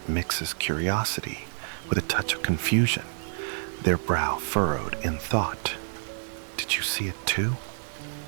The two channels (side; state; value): left; silent; digital silence